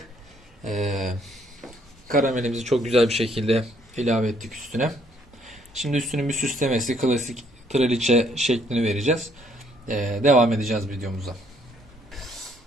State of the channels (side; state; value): both; normal; correlation 0.67